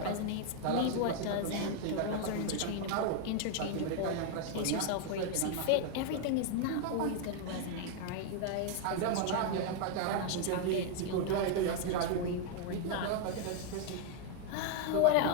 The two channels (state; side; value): different; both; correlation 0.00